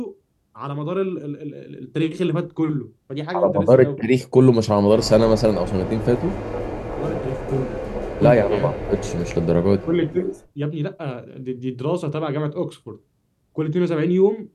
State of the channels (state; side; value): identical; both; correlation 1.00